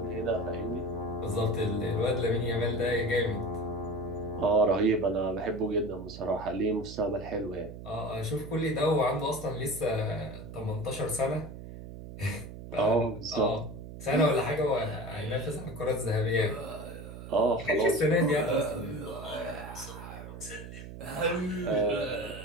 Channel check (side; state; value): right; noise; hum, 12 dB below the sound